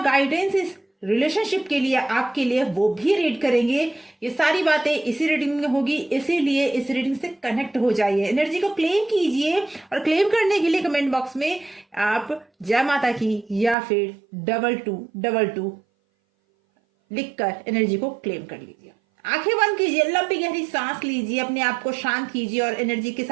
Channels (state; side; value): drops out; left; at 13.8 s